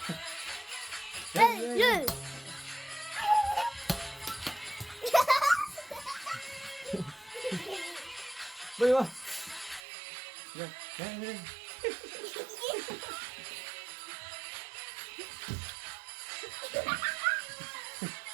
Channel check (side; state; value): left; drops out; at 9.8 s